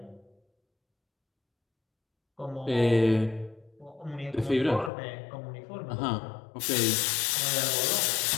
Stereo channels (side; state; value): right; drops out; at 4.9 s